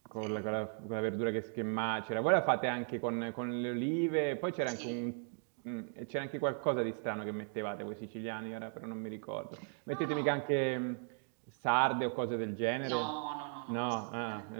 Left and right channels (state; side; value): silent; left; 53 dB below the other